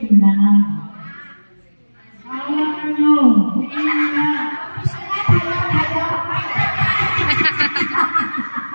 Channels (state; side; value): inverted; both; correlation -1.00